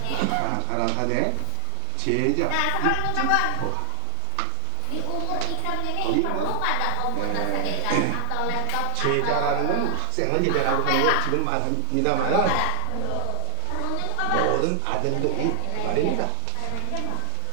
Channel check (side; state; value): both; different; correlation 0.00